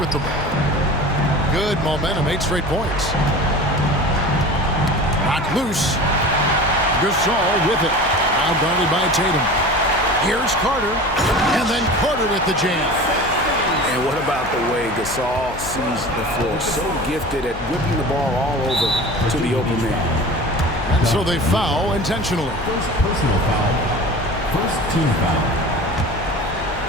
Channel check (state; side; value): noise; left; hum, 13 dB below the sound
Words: the ball. Good momentum, 8 straight points. Knocked loose. Gasol with it. Now guarded by Tatum. Here's Carter. And then Carter with the jam. And what about the way Gasol sees the floor? So gifted at whipping the ball all over to the open man. And so they foul intentionally. First personal foul. First team foul.